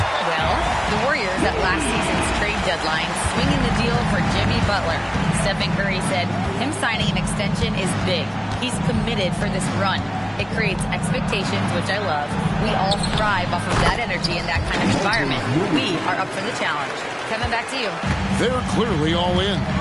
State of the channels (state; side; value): identical; both; correlation 1.00